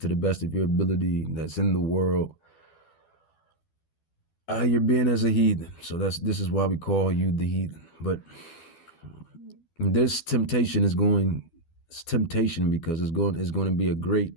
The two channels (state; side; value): late; right; 12 ms